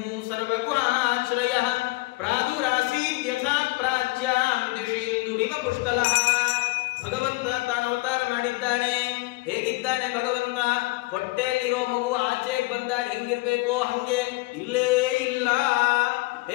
ಸರ್ವಗುಹಾಶ್ರಯ ಪ್ರಾದುರಾಸೀತ್ ಯಥಾ ಪ್ರಾಚ್ಯಾಂ ದಿಶೇಂದುರಿವ ಪುಷ್ಕಲಃ. ಭಗವಂತ ತಾನು ಅವತಾರ ಮಾಡಿದ್ದಾನೆ. ಹೇಗಿದ್ದಾನೆ ಭಗವಂತ? ಹೊಟ್ಟೆಯಲ್ಲಿರೋ ಮಗು ಆಚೆಗೆ ಬಂದಾಗ ಹೆಂಗಿರ್ಬೇಕೋ ಹಂಗೆ ಇಲ್ಲೇ ಇಲ್ಲ.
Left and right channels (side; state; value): right; quieter; 22.7 dB